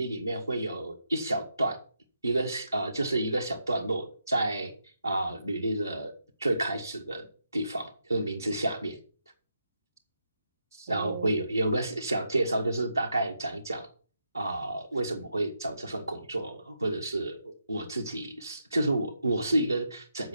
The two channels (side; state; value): both; inverted; correlation -0.82